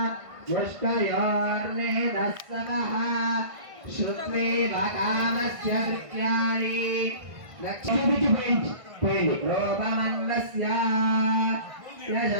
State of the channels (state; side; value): late; left; 1.5 ms